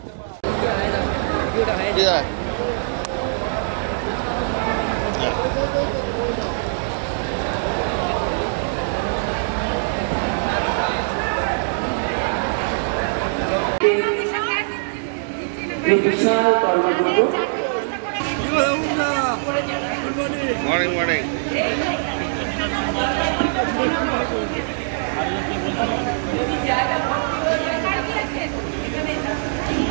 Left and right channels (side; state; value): left; silent; digital silence